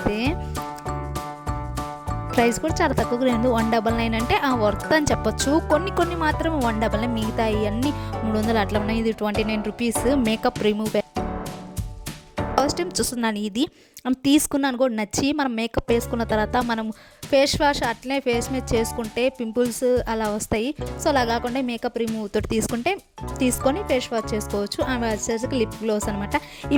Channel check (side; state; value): both; identical; correlation 1.00